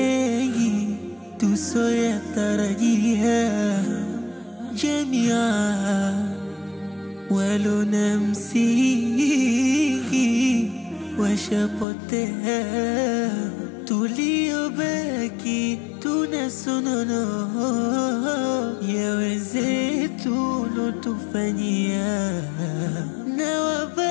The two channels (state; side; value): drops out; right; at 11.9 s